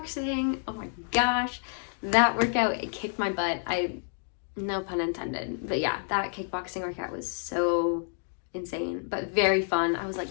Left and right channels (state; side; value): silent; right; 59 dB below the other